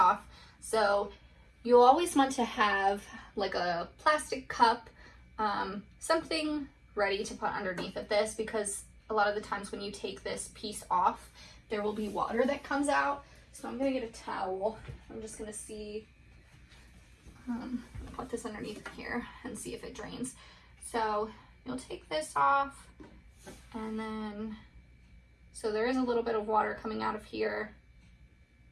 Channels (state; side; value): identical; both; correlation 1.00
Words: So you'll always want to have like a plastic cup, something ready to put underneath of this, because a lot of the times when you take this piece off, there will be water that comes out. So I'm gonna get a towel. I'm just gonna see, put this underneath here and see if it drains. So you'll take this off, and then, so there is a little bit of water coming out of here.